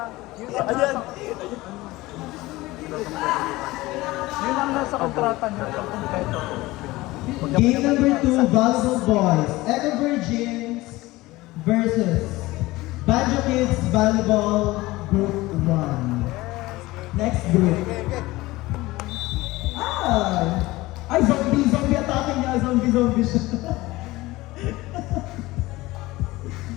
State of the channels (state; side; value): quieter; right; 19.4 dB